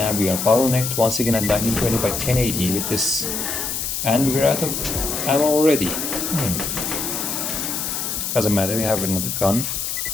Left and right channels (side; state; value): left; noise; hiss, 3 dB below the sound